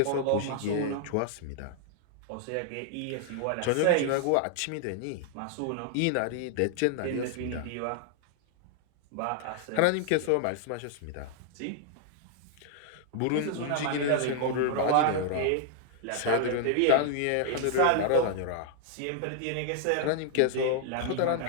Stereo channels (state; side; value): different; both; correlation 0.00